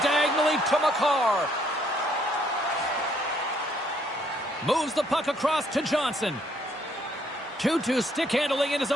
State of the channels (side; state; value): both; normal; correlation 0.68